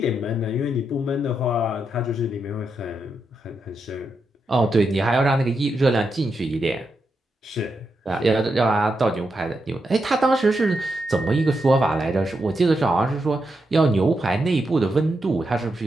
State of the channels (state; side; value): normal; both; correlation 0.84